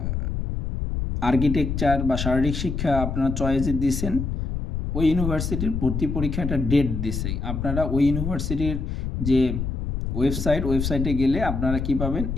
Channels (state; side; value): noise; left; rumble, 3 dB below the sound